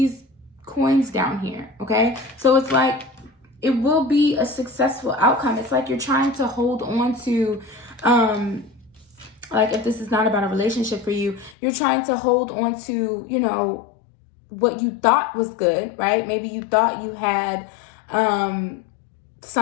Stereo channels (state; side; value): drops out; right; at 11.6 s